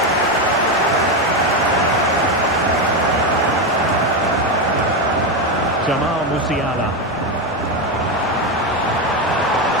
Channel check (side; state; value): right; noise; rumble, 28 dB below the sound